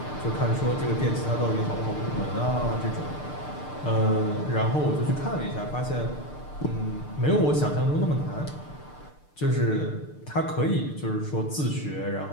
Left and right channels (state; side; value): late; right; 6.7 ms